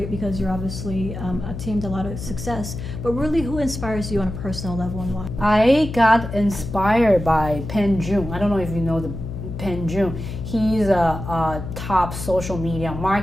because you're obviously attained a lot of success, but really who inspires you on a personal level and why? I got inspired by Pen Jun. I don't know if you know the Pen Jun. He's a top social media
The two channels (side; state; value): left; noise; hum, 7 dB below the sound